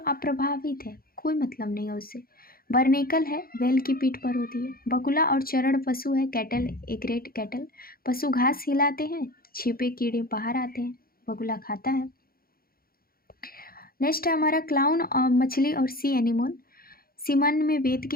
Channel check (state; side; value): late; right; 0.43 ms